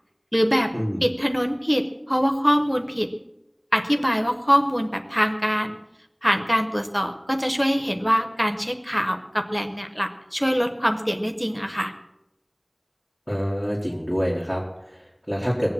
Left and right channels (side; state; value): both; identical; correlation 1.00